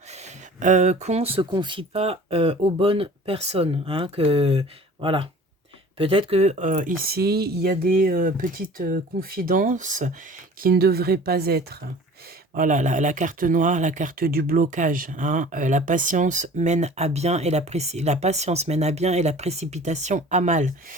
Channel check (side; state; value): both; normal; correlation 0.45